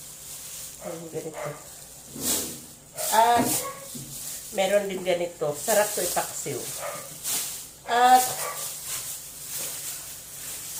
Ayun, ganito. At, meron din ganito. Sarap to ipaksiw. At,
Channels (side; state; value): both; identical; correlation 1.00